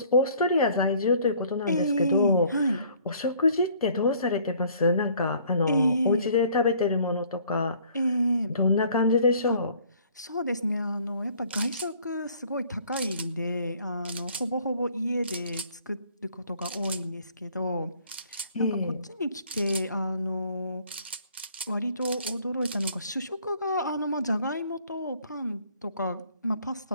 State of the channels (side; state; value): both; inverted; correlation -0.58